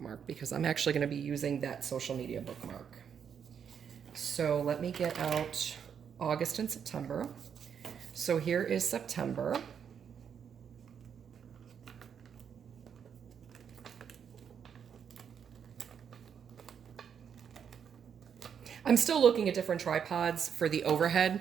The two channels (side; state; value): left; quieter; 7.6 dB